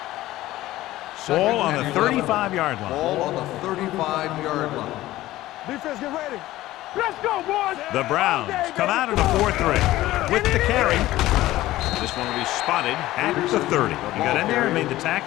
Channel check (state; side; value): quieter; right; 16.1 dB